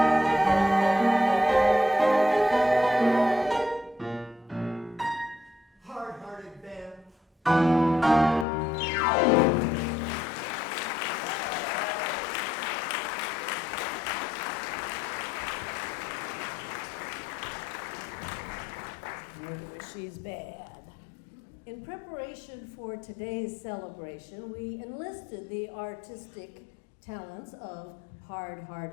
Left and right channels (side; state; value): right; drops out; at 8.5 s